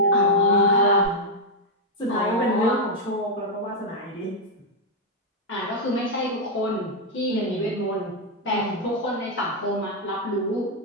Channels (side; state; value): both; normal; correlation -0.01